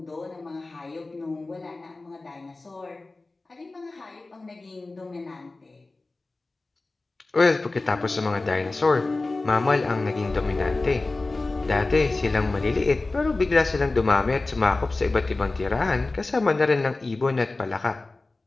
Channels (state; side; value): quieter; right; 3.3 dB